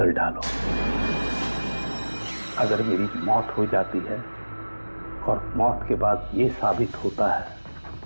डालो। अगर मेरी मौत हो जाती है और मौत के बाद ये साबित होता है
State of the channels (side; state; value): both; inverted; correlation -1.00